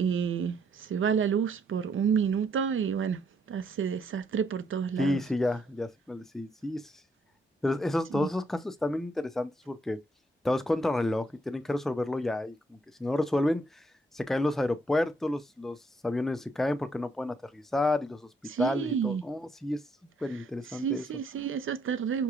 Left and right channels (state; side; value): normal; both; correlation 0.72